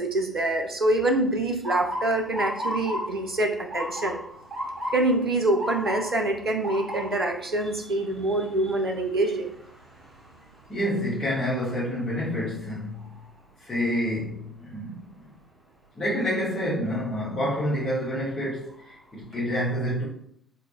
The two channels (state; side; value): normal; both; correlation 0.46